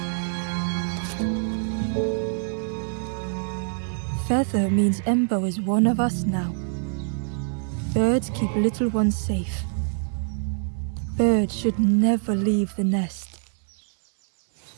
Feather means Ember is one of us now. Birds keep little ones safe. Birds should never leave the nest.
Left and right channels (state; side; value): silent; left; 61 dB below the other